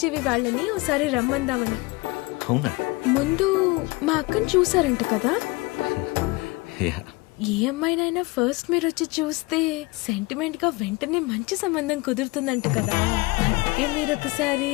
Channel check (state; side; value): quieter; right; 23.5 dB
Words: వాళ్ళని ఒకసారి రమ్మందామని. అవునా? ముందు మా అక్కని చూసారంట కదా. యా. ఏ అమ్మాయినైనా ఫస్ట్ మీరు వచ్చి చూస్తే సెంటిమెంట్ గా వెంటనే మంచి సంబంధం కుదురుతుందంట కదా. అందుకే మీరు ఒకసారి